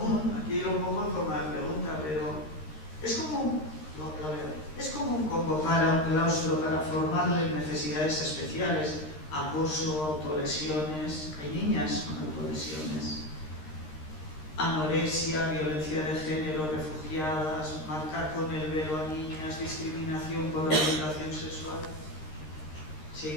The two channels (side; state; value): right; late; 13 ms